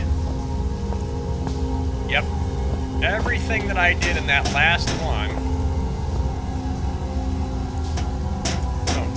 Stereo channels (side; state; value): both; identical; correlation 1.00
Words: Yep. Everything that I did in that last one... Don't